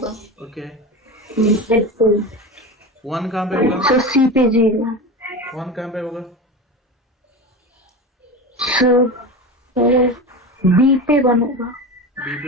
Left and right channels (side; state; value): both; normal; correlation 0.26